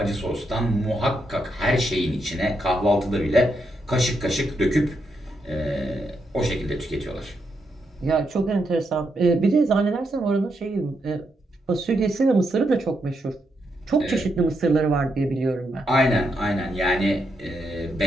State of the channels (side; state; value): both; normal; correlation 0.81